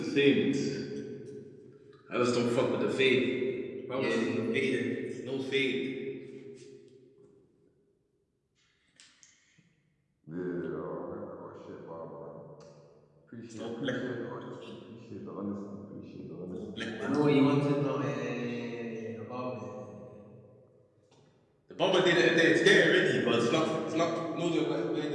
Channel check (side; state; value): both; identical; correlation 1.00